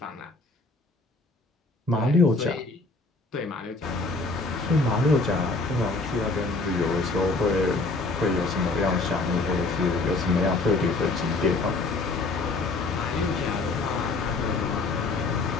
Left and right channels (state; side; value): quieter; right; 3.4 dB